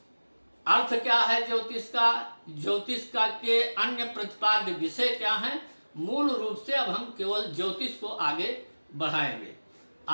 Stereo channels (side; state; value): both; inverted; correlation -1.00